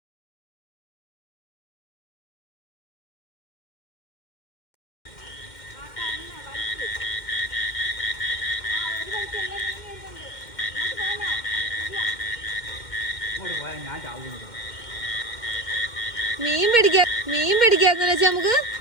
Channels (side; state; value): right; late; 2.1 ms